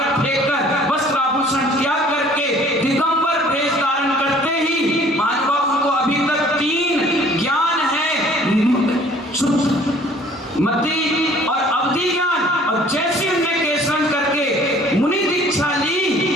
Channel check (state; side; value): normal; both; correlation 0.54